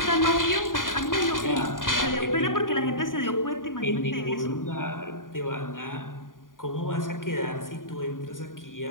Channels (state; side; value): late; right; 0.89 ms